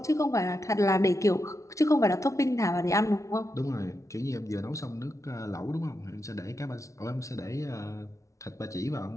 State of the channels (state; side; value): late; right; 0.15 ms